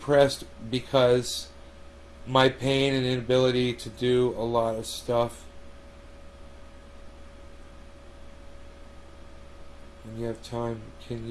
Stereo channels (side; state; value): both; identical; correlation 1.00